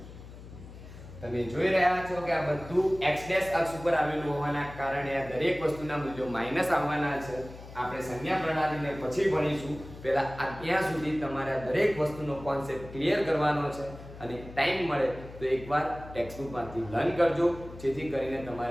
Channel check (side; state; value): left; noise; hum, 15 dB below the sound